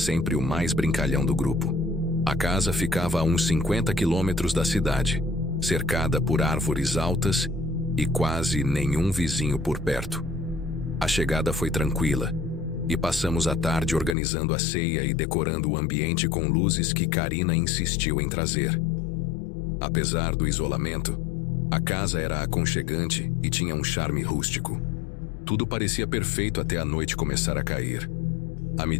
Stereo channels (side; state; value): right; drops out; at 14.2 s